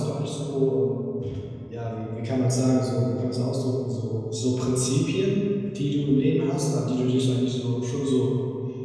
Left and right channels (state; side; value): identical; both; correlation 1.00